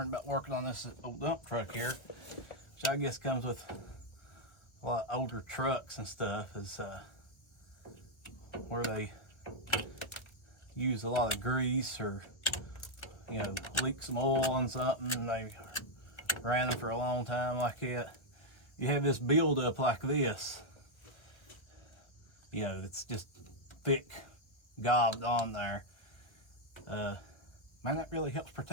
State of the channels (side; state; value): right; late; 1.3 ms